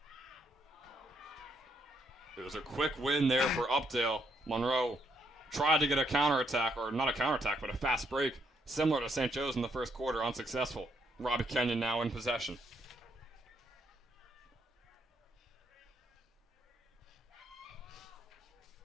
It was a quick win there for Updale. Monroe tried to get a counterattack, or not a counterattack, but a fast break, similar to St. Joe's in the first quarter, unsuccessful. Robbie Kenyon now in possession.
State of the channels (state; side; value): normal; both; correlation 0.75